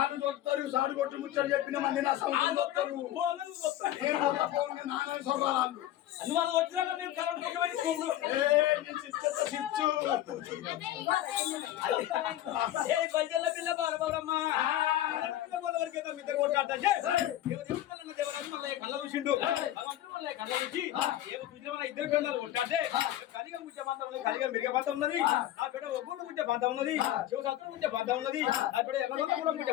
సాడు కొట్టు ముచ్చడు చెప్పిన మంది నా సౌండ్ నాన్న వాళ్ళు వచ్చినాక నేను కరెంట్ పైసల పిల్ల బాలబాబమ్మా ఇద్దరు కొట్టాడు కళ్ళ చూసిండు కళ్ళ చూసి ఇద్దరు పిల్లలు కొట్టాడే కలిగా ముచ్చే పంత ఉన్నది కలిగా మిరిగే పంత ఉన్నది ఆ బిడ్డ ఒగ్గుడు ముచ్చే పంత ఉన్నది శివశాస్త్రం ముచ్చే పంత ఉన్నది ఆ బిడ్డ ఎర్రగొండ కూడా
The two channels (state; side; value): quieter; right; 13.2 dB